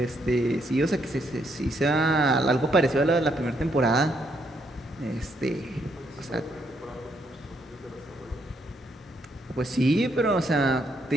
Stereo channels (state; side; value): normal; both; correlation 0.74